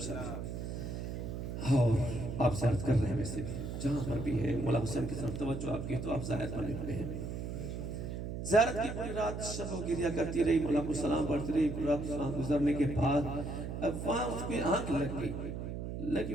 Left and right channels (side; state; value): right; noise; hum, 5 dB below the sound